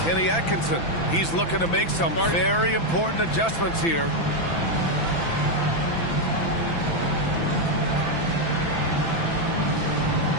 Atkinson. He's looking to make some very important adjustments here.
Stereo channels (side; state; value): right; late; 6.0 ms